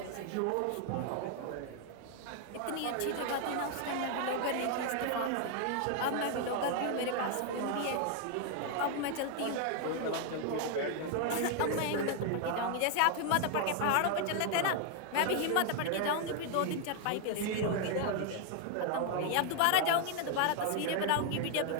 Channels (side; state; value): both; different; correlation 0.00